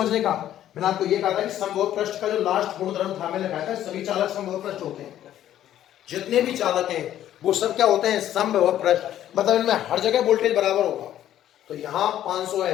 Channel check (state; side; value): quieter; right; 11.8 dB